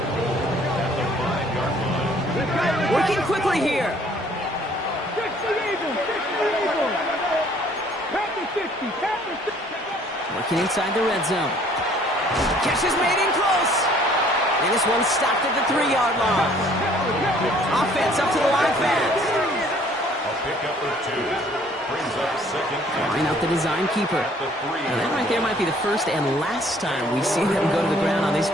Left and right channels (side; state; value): both; normal; correlation 0.58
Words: Working quickly here. 60. Working inside the red zone. Catch is made in close. And this one's stopped at the 3-yard line. Offense up to the line fast. A pickup of 2. Brings up 2nd. Line out the design keeper. Now that right there might be the first and last time we see them go to the ground on this